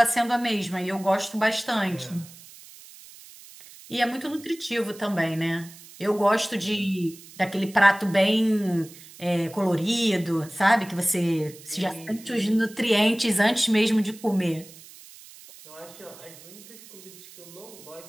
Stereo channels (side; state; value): right; noise; hiss, 20 dB below the sound